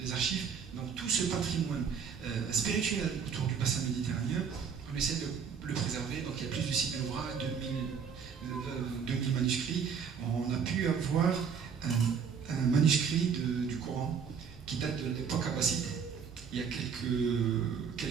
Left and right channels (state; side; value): quieter; left; 6.6 dB